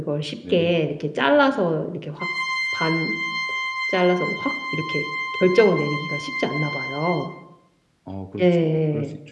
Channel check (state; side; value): identical; both; correlation 1.00